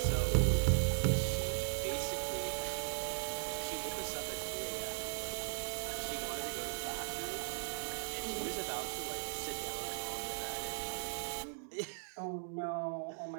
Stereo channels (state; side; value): silent; left; digital silence